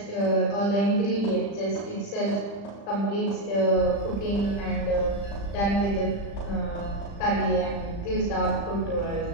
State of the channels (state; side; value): late; right; 35 ms